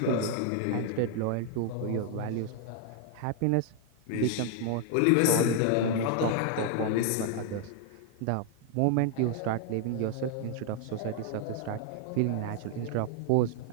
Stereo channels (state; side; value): different; both; correlation 0.00